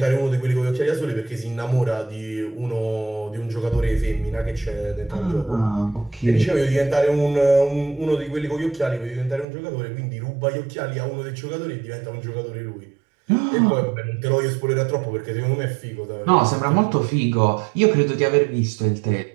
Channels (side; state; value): left; drops out; at 9.5 s